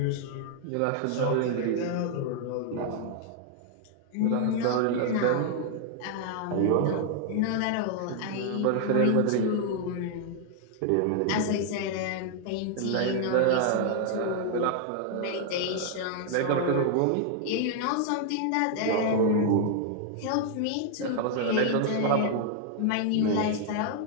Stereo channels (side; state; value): both; different; correlation 0.00